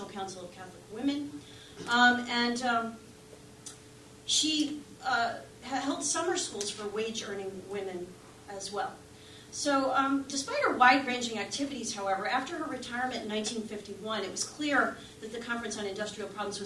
Council of Catholic Women. She held summer schools for wage-earning women as well. So despite her wide-ranging activities, however, after her retirement in 1951, it was clear that the Conference on Industrial Problems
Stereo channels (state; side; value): identical; both; correlation 1.00